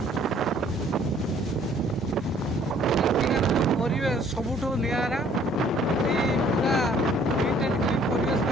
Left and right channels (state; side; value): normal; both; correlation 0.59